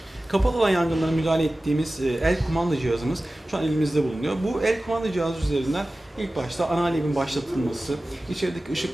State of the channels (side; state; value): both; normal; correlation 0.96